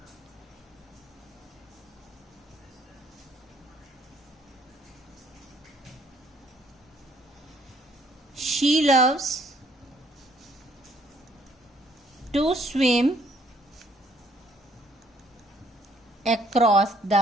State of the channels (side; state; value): both; normal; correlation 0.65